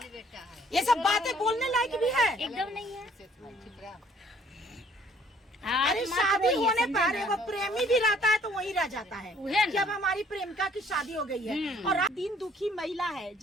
ये सब बातें बोलने लायक भी है, एकदम नहीं है। अरे शादी होने पर एगो प्रेमी भी रहता है तो वही रह जाता है कि अब हमारी प्रेमिका की शादी हो गई है। और दिन दुखी महिला है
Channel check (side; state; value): both; normal; correlation 0.60